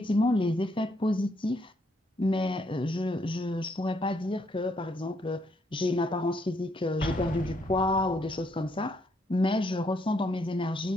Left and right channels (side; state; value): both; normal; correlation 0.73